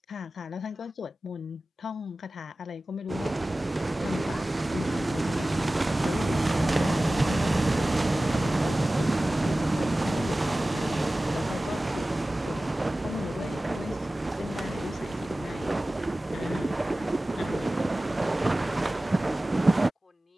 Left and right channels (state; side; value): normal; both; correlation 0.97